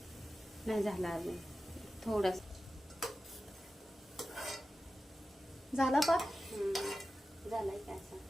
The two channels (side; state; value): both; normal; correlation 0.94